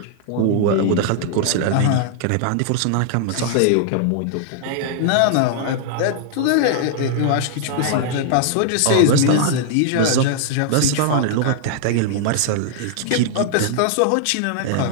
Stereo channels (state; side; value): different; both; correlation -0.01